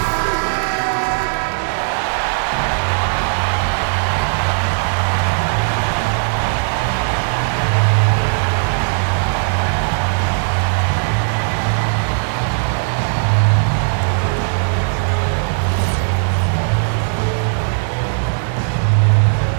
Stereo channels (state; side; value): silent; left; digital silence